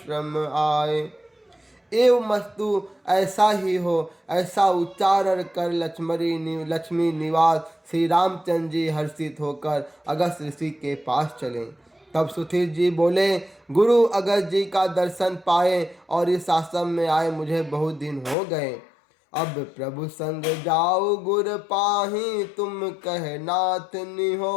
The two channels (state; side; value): drops out; right; at 18.4 s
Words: आए। एव मस्तु ऐसा ही हो, ऐसा उच्चारण कर लक्ष्मी निवास श्री रामचंद्र जी हर्षित होकर अगस्त ऋषि के पास चले। तब सुधीर जी बोले, गुरु अगस्त जी का दर्शन पाए और इस आश्रम में आए मुझे बहुत दिन हो गए। अब प्रभु संग जाओ गुर पाही, तुम कह नाथ